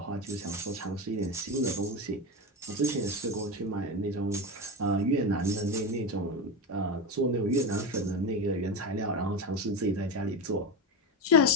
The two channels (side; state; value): both; normal; correlation 0.19